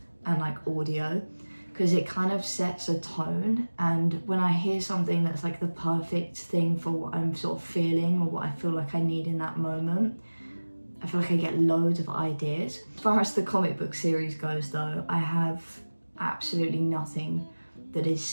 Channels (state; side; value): inverted; both; correlation -1.00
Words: and like audio, because it kind of sets a tone, and when I hear something that's like the perfect thing for what I'm sort of feeling or what I feel like I need in that moment, I feel like I get loads of ideas. As far as the comic book series goes though, I have absolutely nothing that is